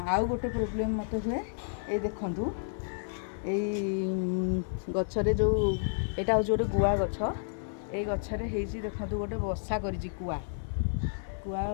आउ गोटे प्रोब्लेम मत हुए ये देखंतु गछरे जो एटा हो गोटे गुआ गछ। ये गछरे हेजी देखंतु गोटे बसा करिछि कुआ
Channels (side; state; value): right; silent; 57 dB below the other